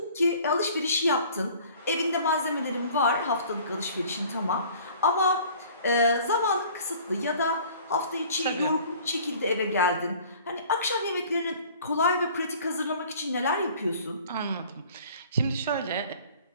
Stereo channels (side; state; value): both; inverted; correlation -0.50